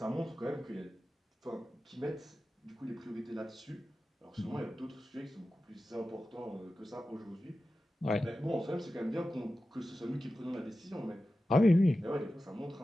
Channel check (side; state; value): both; normal; correlation 0.93